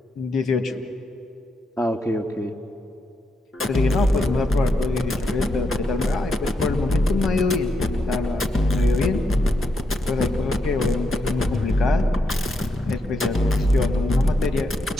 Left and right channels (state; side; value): normal; both; correlation 0.81